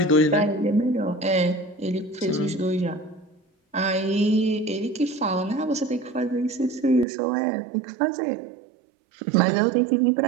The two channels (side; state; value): left; drops out; at 7.1 s